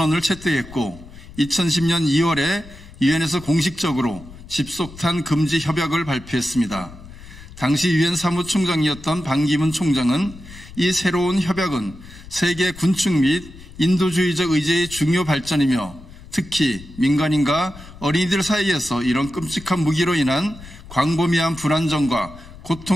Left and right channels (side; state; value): left; noise; rumble, 18 dB below the sound